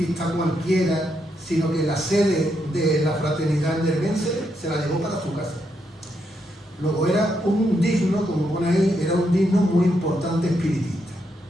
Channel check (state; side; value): normal; both; correlation 0.80